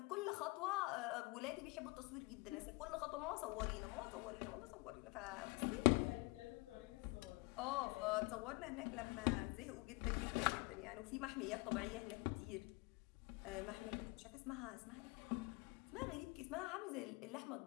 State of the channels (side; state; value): right; quieter; 26.1 dB